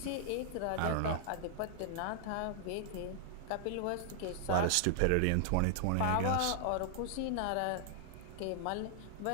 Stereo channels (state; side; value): different; both; correlation 0.00